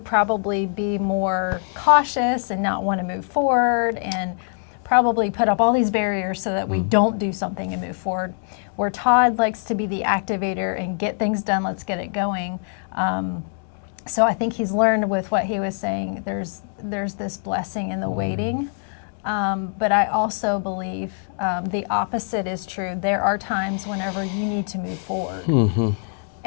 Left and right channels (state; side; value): silent; right; 59 dB below the other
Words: probably be more cautious and not want to move forward, and probably put up all these barriers so that we don't do something and move forward. Where Todd likes to be the activator and get things done, let's get it going. So I think he's learned with what he was saying, there's this blessing in the waiting. But I also believe the opposite is true. There are times whenever you need to move forward.